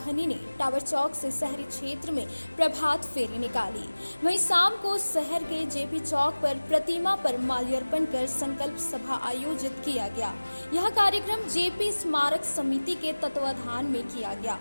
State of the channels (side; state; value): both; inverted; correlation -1.00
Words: ने टावर चौक से शहरी क्षेत्र में प्रभात फेरी निकाली। वहीं शाम को शहर के जेपी चौक पर प्रतिमा पर माल्यार्पण कर संकल्प सभा आयोजित किया गया। यह कार्यक्रम जेपी स्मारक समिति के तत्वाधान में किया गया।